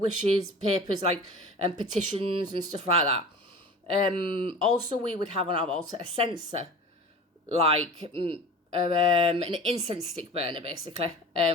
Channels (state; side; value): normal; both; correlation 0.38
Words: papers, like petitions and stuff like that. Also, we would have on our altar a censer, like an incense stick burner, basically.